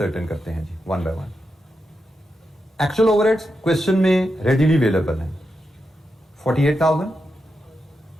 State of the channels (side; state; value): both; normal; correlation 0.87